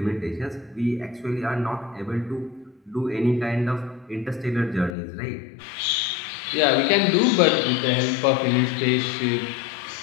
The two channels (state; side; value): drops out; right; at 5.0 s